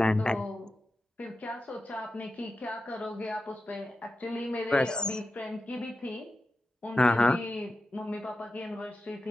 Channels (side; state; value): both; normal; correlation 0.91